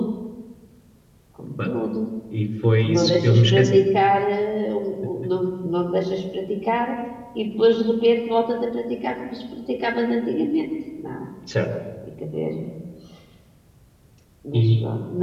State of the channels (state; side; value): identical; both; correlation 1.00